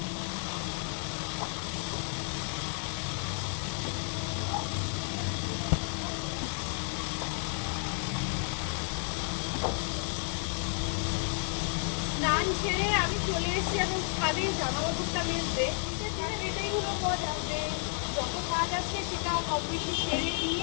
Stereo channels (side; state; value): right; silent; 57 dB below the other